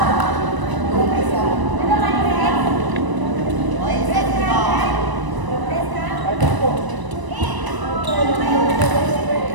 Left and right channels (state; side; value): late; left; 1.0 ms